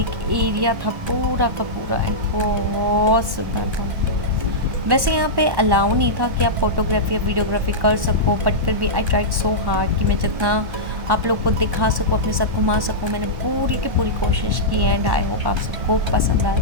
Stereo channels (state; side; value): late; left; 1.1 ms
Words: एरिया था पूरा का पूरा एंड बहुत सुंदर था। वैसे यहाँ पे अलाउ नहीं था कि आप फोटोग्राफी या वीडियोग्राफी कर सको, बट फिर भी आई ट्राइड सो हार्ड कि मैं जितना आप लोग को दिखा सकूँ, अपने साथ घुमा सकूँ, मैंने पूरी की पूरी कोशिश की। एंड आई होप आप सबको पसंद आए।